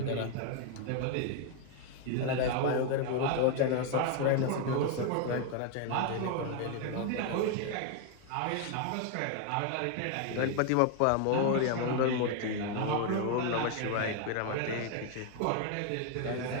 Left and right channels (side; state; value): both; different; correlation 0.01